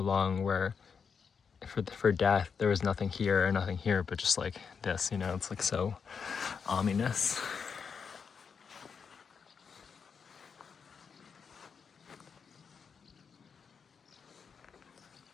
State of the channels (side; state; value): right; quieter; 6.1 dB